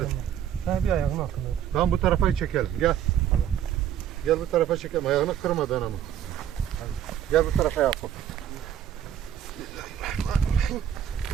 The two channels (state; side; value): quieter; left; 10.0 dB